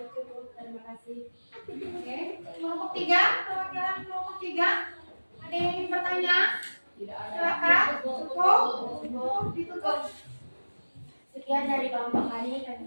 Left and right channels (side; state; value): both; inverted; correlation -1.00